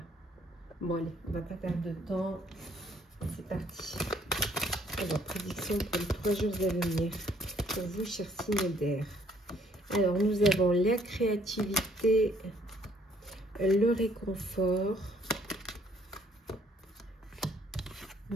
Bon, allez, on va pas perdre de temps. C'est parti. Alors, prédiction pour les 3 jours à venir. Pour vous, chers signes d'air. Alors, nous avons la créativité, le réconfort,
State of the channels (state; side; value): normal; both; correlation 0.64